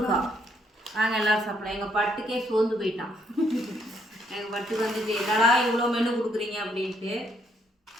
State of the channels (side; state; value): both; normal; correlation 0.71